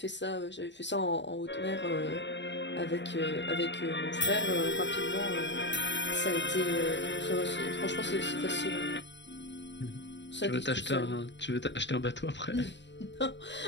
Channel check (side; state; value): right; late; 0.52 ms